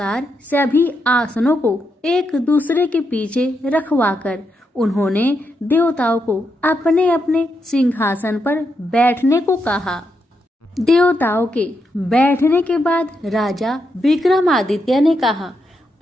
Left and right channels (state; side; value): normal; both; correlation 0.82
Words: सभी आसनों को एक दूसरे के पीछे रखवाकर उन्होंने देवताओं को अपने अपने सिंहासन पर बैठने को कहा। देवताओं के बैठने के बाद राजा विक्रमादित्य ने कहा,